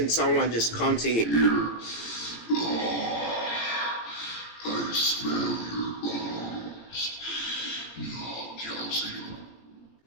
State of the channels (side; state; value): right; late; 18 ms